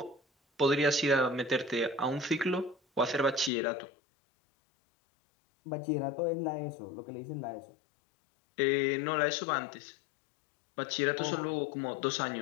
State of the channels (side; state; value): right; drops out; at 3.5 s